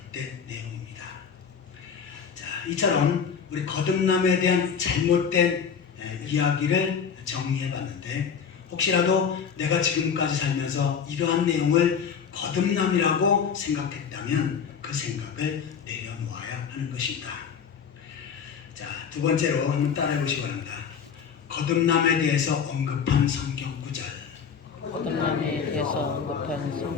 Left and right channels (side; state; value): right; quieter; 6.8 dB